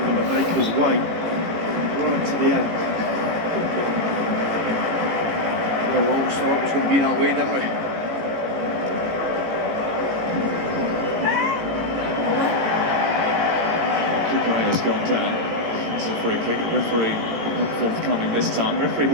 to make us wait right to the end. We always thought it was going to be that way, didn't we? Kukureya's gone down. It's a free kick. Referee not forthcoming this time. Referee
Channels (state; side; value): late; left; 18 ms